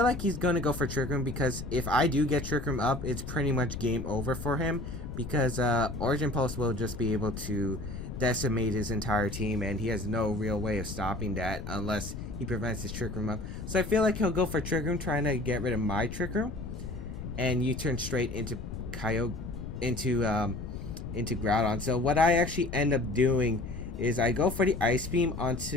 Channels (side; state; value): left; noise; rumble, 8 dB below the sound